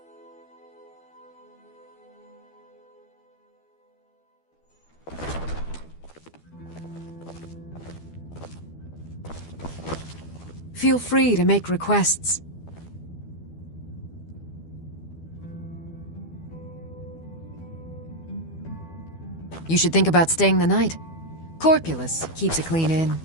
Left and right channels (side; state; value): right; late; 12 ms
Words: Feel free to make requests. You should think about staying the night. Corpulus keeps a clean inn.